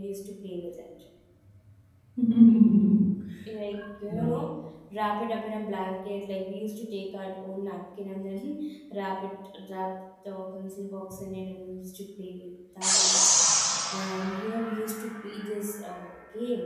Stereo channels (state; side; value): identical; both; correlation 1.00